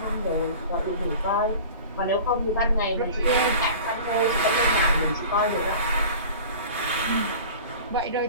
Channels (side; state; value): both; inverted; correlation -0.39